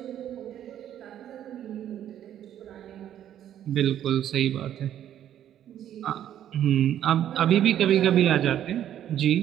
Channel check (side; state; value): left; quieter; 10.9 dB